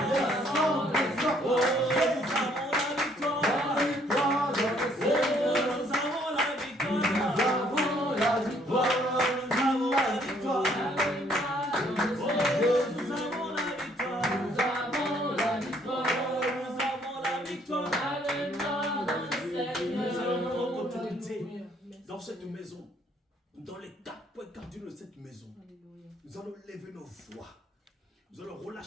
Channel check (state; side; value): normal; both; correlation 0.65